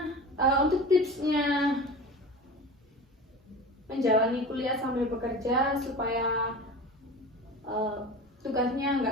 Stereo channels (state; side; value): normal; both; correlation 0.33